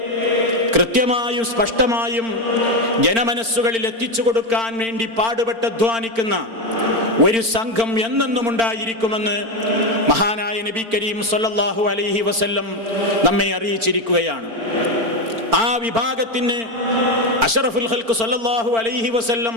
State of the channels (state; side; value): late; left; 4.4 ms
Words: കൃത്യമായും സ്പഷ്ടമായും ജനമനസ്സുകളിൽ എത്തിച്ചു കൊടുക്കാൻ വേണ്ടി പാടുപെട്ട് അധ്വാനിക്കുന്ന ഒരു സംഘം എന്നെന്നും ഉണ്ടായിരിക്കുമെന്ന് മഹാനായ നബി കരീം സല്ലല്ലാഹു അലൈഹി വസല്ലം നമ്മെ അറിയിച്ചിരിക്കുകയാണ്. ആ വിഭാഗത്തിന് അഷ്റഫുൽ ഖൽഖ് സല്ലല്ലാഹു അലൈഹി വസല്ലം